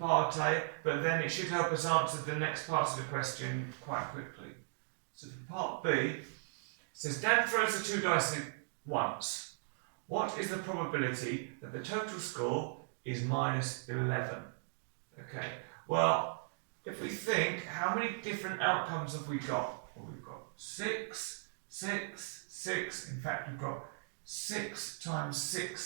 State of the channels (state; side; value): silent; left; digital silence